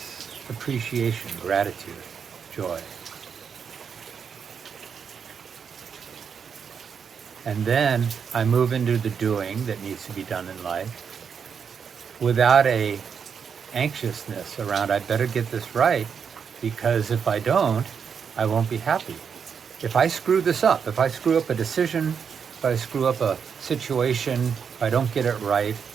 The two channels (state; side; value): quieter; left; 6.8 dB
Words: appreciation, gratitude, joy. And then I move into the doing that needs to be done in life without a anxiousness around, I better get this right, because if I don't, I won't be happy. If I screw this up, if I screw up a decision, if I screw up a situation, if I don't get it right,